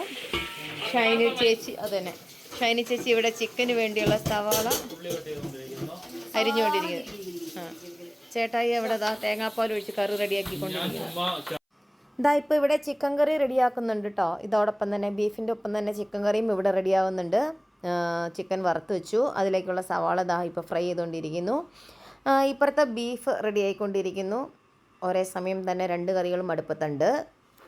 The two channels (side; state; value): both; identical; correlation 1.00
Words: ഷൈനി ചേച്ചി അതന്നെ ഷൈനി ചേച്ചി ഇവിടെ ചിക്കന് വേണ്ടിയുള്ള സവാള അരിഞ്ഞുകൊണ്ടിരിക്കുന്നു. ആ, ചേട്ടായി അവിടെ തേങ്ങാപ്പാൽ ഒഴിച്ച് കറി റെഡിയാക്കിക്കൊണ്ടിരിക്കുന്നു. ഇതാ ഇപ്പോൾ ഇവിടെ ചിക്കൻ കറി റെഡിയാക്കുന്നുണ്ട് കേട്ടോ. ഇതോടൊപ്പം തന്നെ ബീഫിൻ്റെ ഒപ്പം തന്നെ ചിക്കൻ കറിയും ഇവിടെ റെഡിയാവുന്നുണ്ട്. ചിക്കൻ വറുത്ത് വെച്ചു. അതിലേക്കുള്ള സവാള ഇപ്പോൾ ഫ്രൈ ചെയ്തുകൊണ്ടിരിക്കുന്നു. ഇപ്പുറത്തെ ബീഫ് റെഡി ആയിക്കൊണ്ടിരിക്കുന്നു. ഒരേ സമയം തന്നെ 2 കറികളും അടുപ്പത്തുണ്ട്.